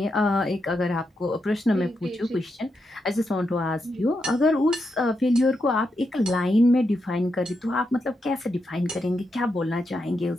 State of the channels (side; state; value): both; normal; correlation 0.84